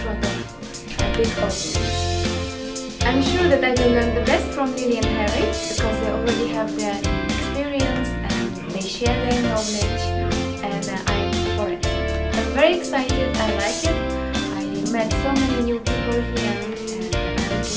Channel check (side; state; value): both; identical; correlation 1.00